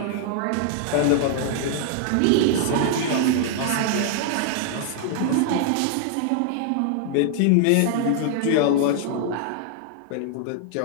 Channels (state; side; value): different; both; correlation 0.00